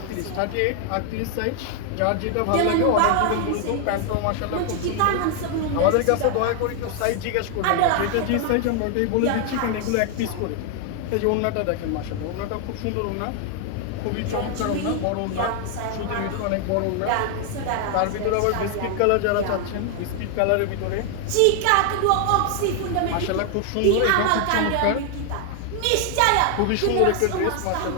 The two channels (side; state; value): both; different; correlation 0.00